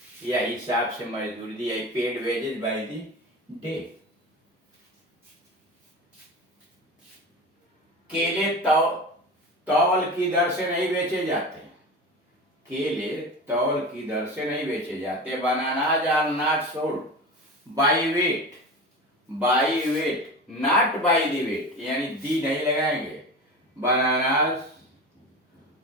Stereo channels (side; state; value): both; normal; correlation 0.30